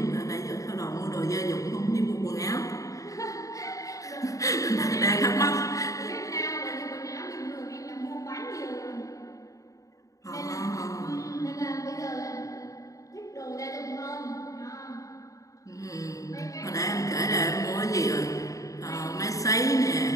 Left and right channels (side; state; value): right; late; 0.16 ms